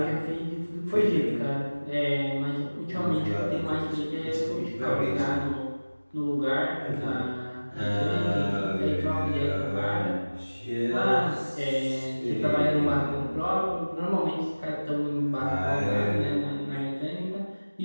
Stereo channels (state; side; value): inverted; both; correlation -1.00